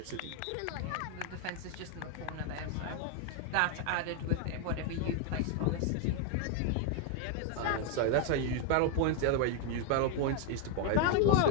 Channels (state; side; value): different; both; correlation 0.01